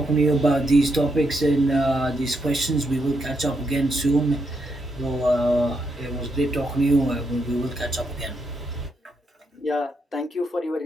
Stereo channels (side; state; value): both; normal; correlation 0.80